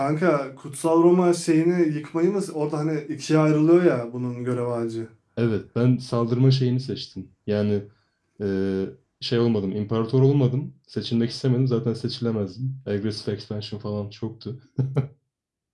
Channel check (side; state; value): both; identical; correlation 1.00